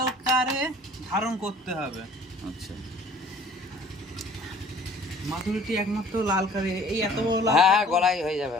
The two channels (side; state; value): both; normal; correlation 0.52